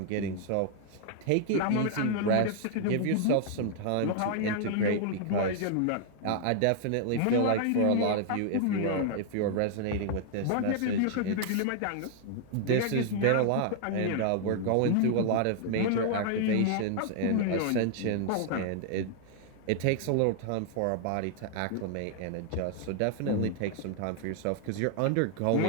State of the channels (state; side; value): different; both; correlation 0.00